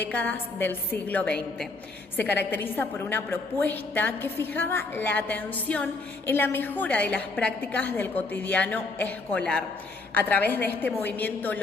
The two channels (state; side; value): quieter; right; 3.5 dB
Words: del siglo XX. Se caracteriza por una propuesta que fijaba la atención en la mejora de las prácticas del cotidiano escolar. A través de este movimiento